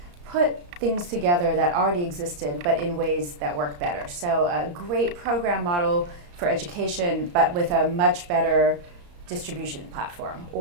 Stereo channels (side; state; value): left; late; 34 ms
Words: put things together that already existed, but in ways that work better. So a great program model for education, but with a much better distribution platform,